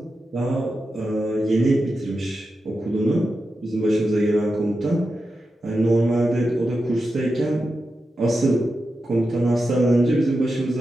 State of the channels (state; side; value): normal; both; correlation 0.90